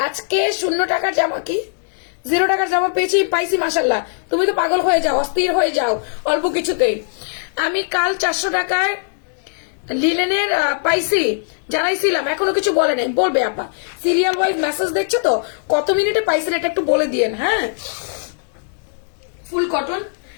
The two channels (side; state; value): right; silent; digital silence